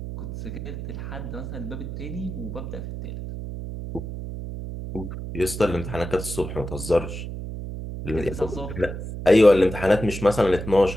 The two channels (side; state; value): right; noise; hum, 7 dB below the sound